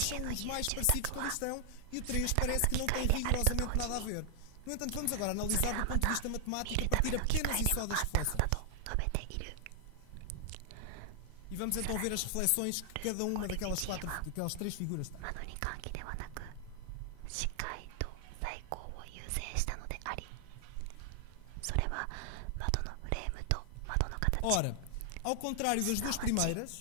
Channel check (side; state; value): both; different; correlation 0.00